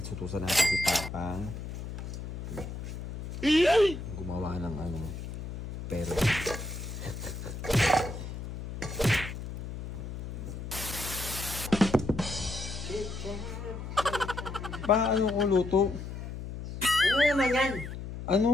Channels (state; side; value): noise; left; hum, 8 dB below the sound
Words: sutusan natin si Papa. Gumawa ng ano, pero Paano ko luto? Ano naman yan?